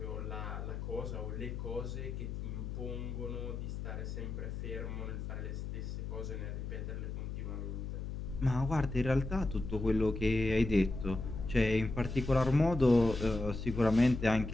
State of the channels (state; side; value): noise; left; hum, 5 dB below the sound